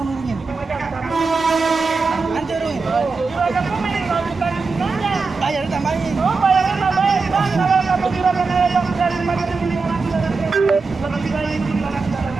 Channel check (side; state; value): left; quieter; 4.3 dB